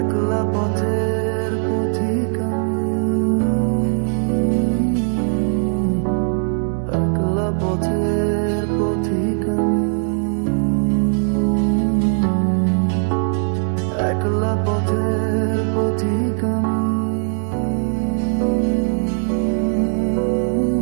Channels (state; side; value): silent; left; 66 dB below the other